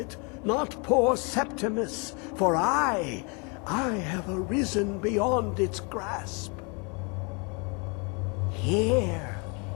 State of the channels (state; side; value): quieter; right; 33.1 dB